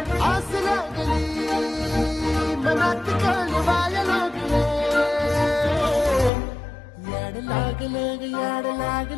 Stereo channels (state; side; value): drops out; right; at 6.3 s